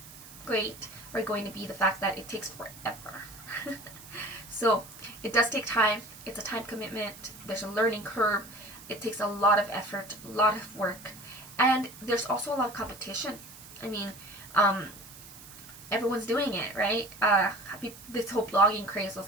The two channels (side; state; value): right; noise; hiss, 17 dB below the sound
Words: great are going to be the fact that it takes forever. So it does take time. It's a time commitment. There's a learning curve. It takes a lot of effort, a lot of work. And there's also a lot of competition. I mean, everyone's doing it, right? This whole blogging craze